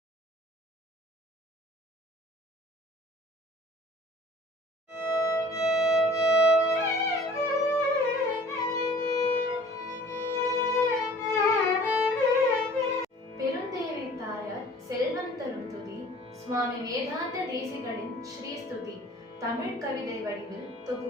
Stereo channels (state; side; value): normal; both; correlation 0.49